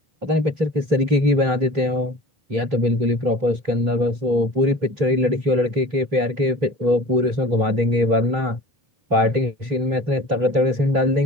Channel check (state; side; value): late; left; 3.2 ms